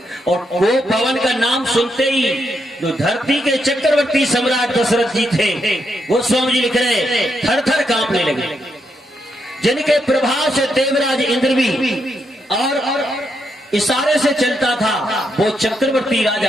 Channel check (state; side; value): normal; both; correlation 0.80